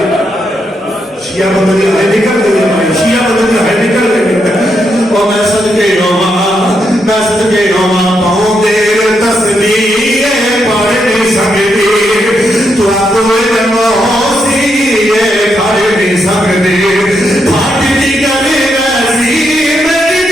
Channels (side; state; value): both; normal; correlation 0.80